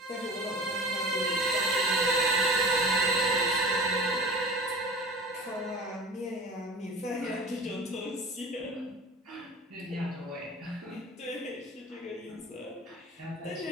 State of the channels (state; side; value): normal; both; correlation 0.38